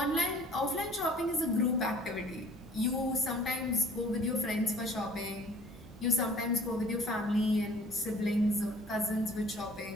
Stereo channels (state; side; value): normal; both; correlation 0.52